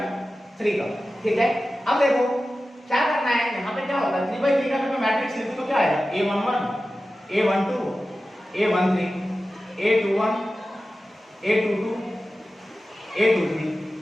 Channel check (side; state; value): both; normal; correlation 0.94